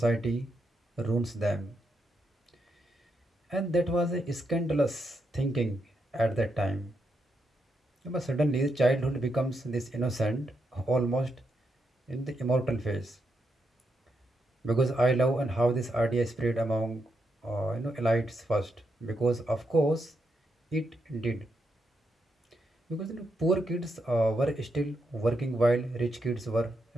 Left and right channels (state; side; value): normal; both; correlation 0.82